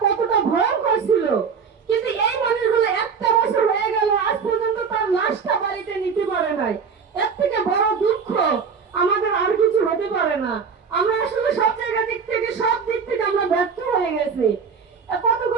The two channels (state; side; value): quieter; left; 6.0 dB